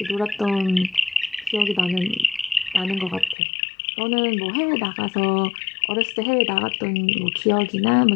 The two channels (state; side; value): drops out; right; at 3.4 s